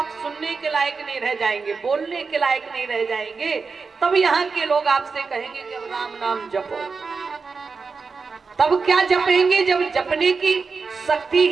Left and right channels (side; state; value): left; quieter; 4.8 dB